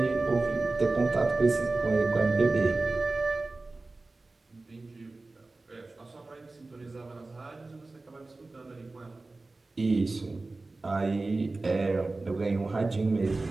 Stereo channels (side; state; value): left; quieter; 3.3 dB